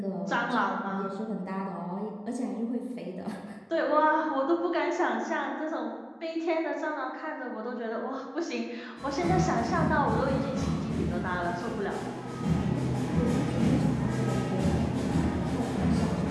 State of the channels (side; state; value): both; identical; correlation 1.00